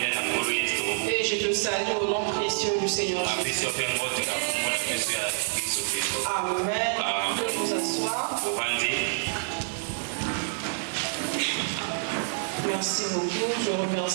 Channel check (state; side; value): silent; left; digital silence